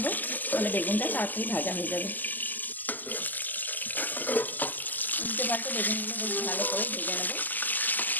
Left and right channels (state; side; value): late; right; 0.085 ms